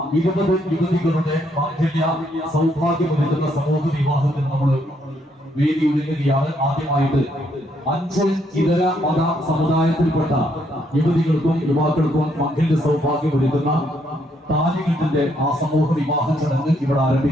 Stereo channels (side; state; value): both; normal; correlation 0.72